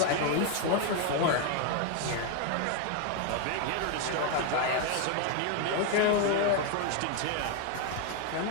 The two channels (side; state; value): both; different; correlation 0.01